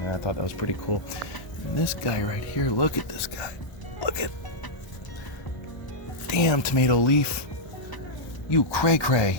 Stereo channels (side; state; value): right; late; 1.2 ms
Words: and I thought that was pretty cool. And this guy right here, look at this guy. Look at, damn tomato leaf. You